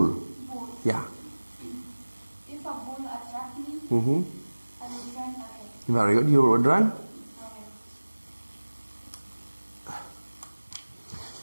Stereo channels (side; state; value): both; inverted; correlation -1.00